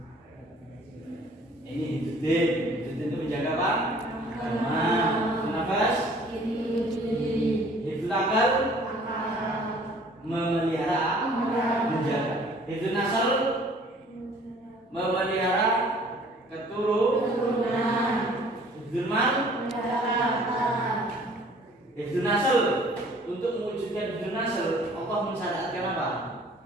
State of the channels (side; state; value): both; normal; correlation 0.54